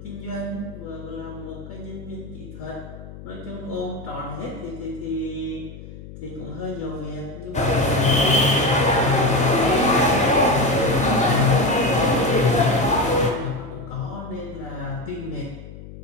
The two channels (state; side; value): noise; left; hum, 15 dB below the sound